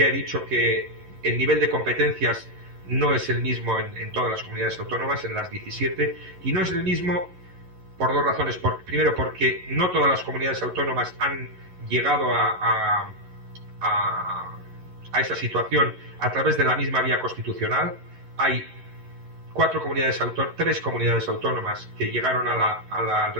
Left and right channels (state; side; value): late; left; 11 ms